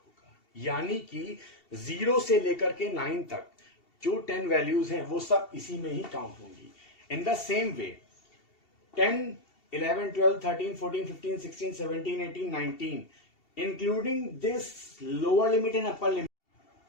होगा। यानी कि 0 से लेकर के 9 तक जो 10 वैल्यूज हैं वो सब इसी में ही काउंट होंगी। इन the same way 10, 11, 12, 13, 14, 15, 16, 17, 18, 19, including this lower limit and upper limit.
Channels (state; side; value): late; right; 2.7 ms